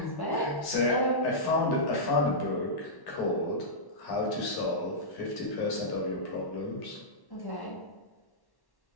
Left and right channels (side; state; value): right; late; 1.1 ms